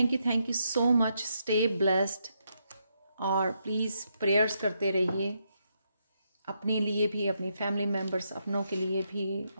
so much. Stay blessed, और प्लीज़ प्रेयर्स करते रहिए अपने लिए भी, अपनी फैमिली मेम्बर्स, अपनों के लिए भी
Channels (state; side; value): inverted; both; correlation -0.79